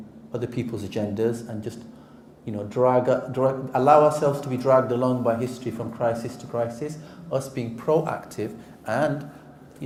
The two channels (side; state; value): both; identical; correlation 1.00